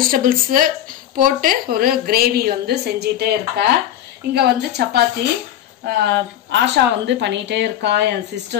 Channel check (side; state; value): right; quieter; 11.6 dB